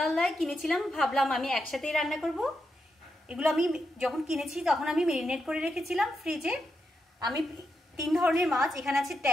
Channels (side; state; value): both; normal; correlation 0.85